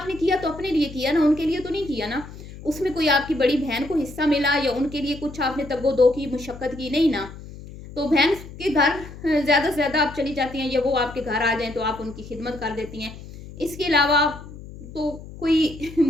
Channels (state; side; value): noise; left; hum, 15 dB below the sound